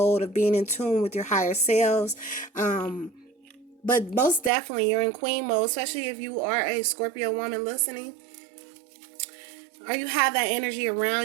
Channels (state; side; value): drops out; left; at 4.5 s